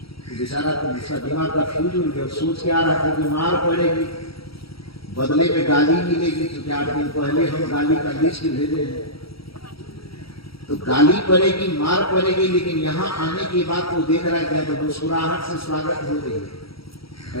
बेचारा तो उसका दिमाग का फ्यूज उड़ गया, सोच के आ रहा था कि मार पड़ेगी, बदले में गाली मिलेगी, क्योंकि 8 दिन पहले हम गाली का लिस्ट भेजे हैं, तो गाली पड़ेगी मार पड़ेगी। लेकिन यहाँ आने के बाद तो देख रहा है क्या, तो मुस्कुराहट से स्वागत हो रही है।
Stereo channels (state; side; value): late; right; 0.75 ms